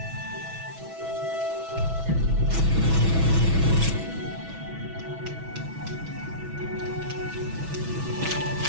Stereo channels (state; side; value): late; left; 6.1 ms